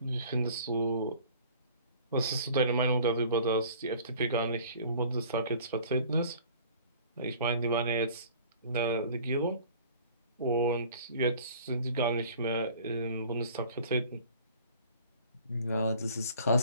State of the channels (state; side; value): inverted; both; correlation -0.49